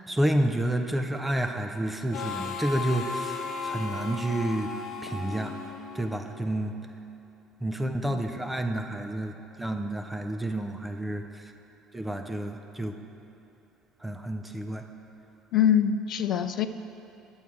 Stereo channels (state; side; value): normal; both; correlation 0.66